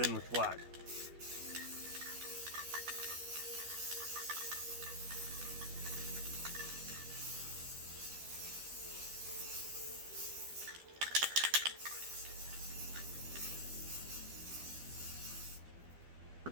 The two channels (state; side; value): late; left; 12 ms